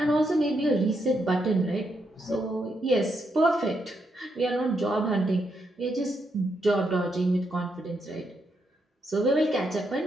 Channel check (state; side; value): normal; both; correlation 0.80